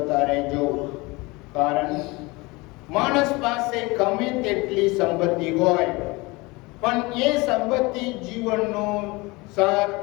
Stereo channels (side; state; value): right; quieter; 24.1 dB